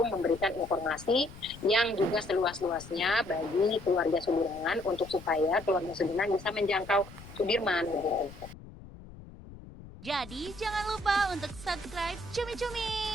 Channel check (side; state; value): left; noise; rumble, 17 dB below the sound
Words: memberikan informasi yang juga seluas-luasnya bagi keluarga Sudirman untuk supaya keluarga Sudirman bisa menjangkau Sudirman gitu. Jadi jangan lupa untuk subscribe Cumi Cumi.